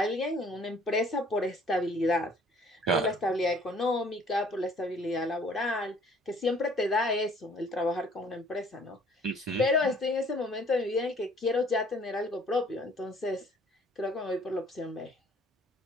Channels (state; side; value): normal; both; correlation 0.57